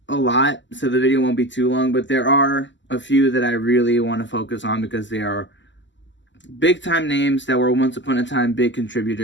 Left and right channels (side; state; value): right; late; 0.54 ms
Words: a lot, so the video won't be too long, but there are a few that I really want to focus on because they are big-time names that were once upon a time big